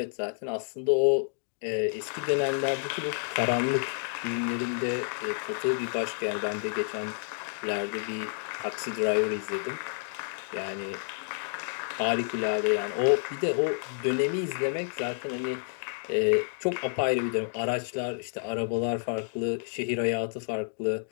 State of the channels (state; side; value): silent; right; digital silence